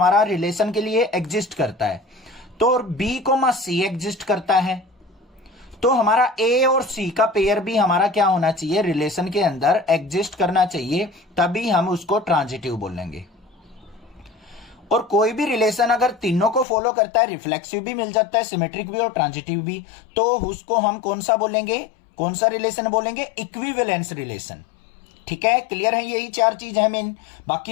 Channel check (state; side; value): drops out; right; at 16.7 s